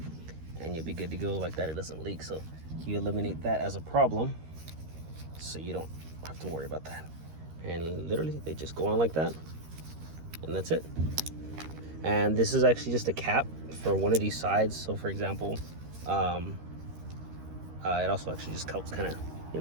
and you'll be good to go like that. It doesn't leak. So you eliminate that as a problem, so you don't have to worry about that. And literally they just go on like that, and that's it. And this is actually just a cap for one of these sides. So for example, it also actually just helps kind of, you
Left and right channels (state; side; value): late; left; 13 ms